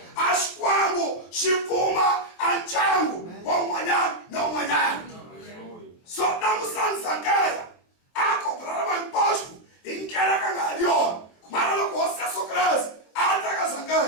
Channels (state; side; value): late; right; 24 ms